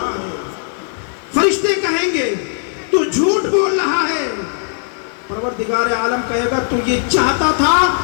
فرشتے کہیں گے تو جھوٹ بول رہا ہے. پروردگار عالم کہے گا تو یہ چاہتا تھا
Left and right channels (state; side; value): silent; right; digital silence